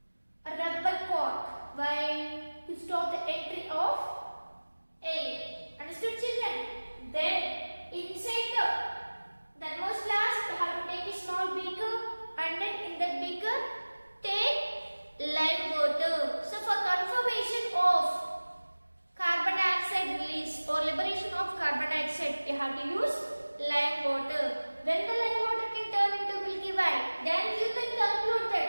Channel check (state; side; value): inverted; both; correlation -1.00